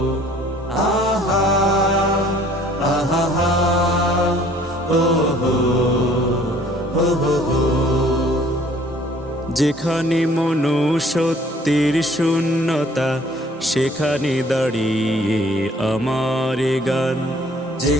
আহা আহা হা ও হো হো হো হো। যেখানে মনুষ্যত্বের শূন্যতা সেখানে দাঁড়িয়ে আমার গান,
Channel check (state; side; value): normal; both; correlation 0.56